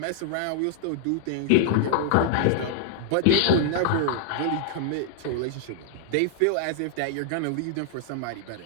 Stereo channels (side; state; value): both; different; correlation -0.01